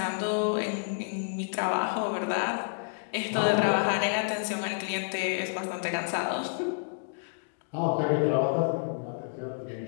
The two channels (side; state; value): right; silent; digital silence